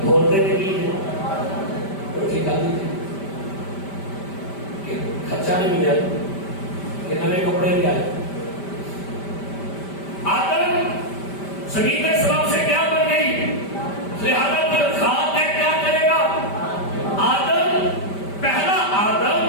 بولتے نہیں تو ٹھیک آ کہ خرچہ نہیں ملیا کہ نئے کپڑے بھی آئے۔ آدم زمین کے سبب سے کیا بن گئی، لہذا پر خاک ہے کیا کرے گا؟ آدم پہلا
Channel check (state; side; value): late; right; 5.1 ms